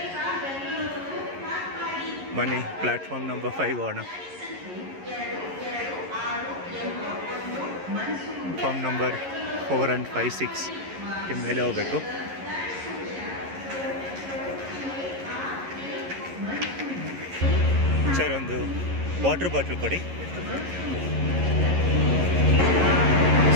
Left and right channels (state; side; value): late; left; 11 ms